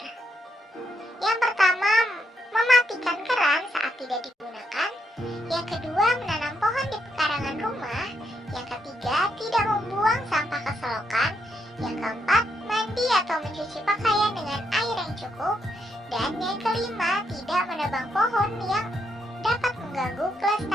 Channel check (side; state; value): both; normal; correlation 0.79